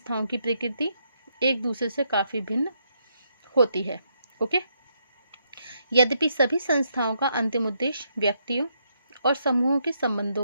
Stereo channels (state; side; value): inverted; both; correlation -0.77